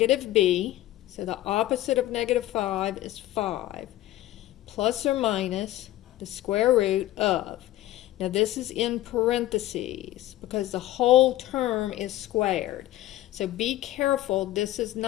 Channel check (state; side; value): quieter; right; 15.1 dB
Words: b, so the opposite of negative 5 is 5, plus or minus the square root of, now this is in parentheses because the whole term is squared. So be careful, this is